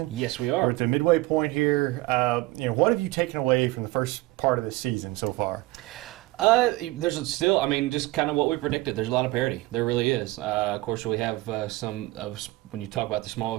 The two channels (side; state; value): left; quieter; 20.3 dB